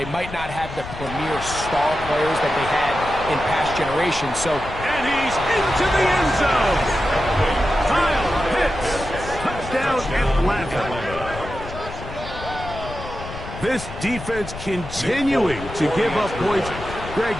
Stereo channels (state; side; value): noise; left; rumble, 11 dB below the sound